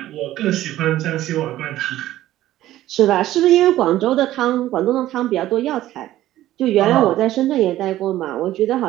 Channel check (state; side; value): quieter; left; 14.3 dB